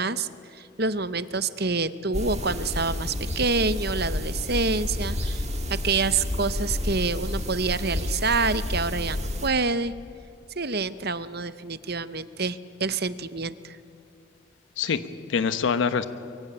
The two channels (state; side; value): normal; both; correlation 0.20